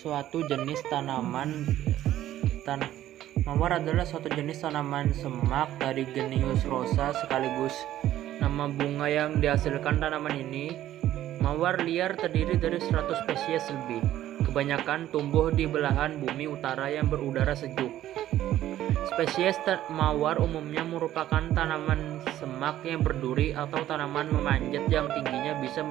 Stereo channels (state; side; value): quieter; left; 13.0 dB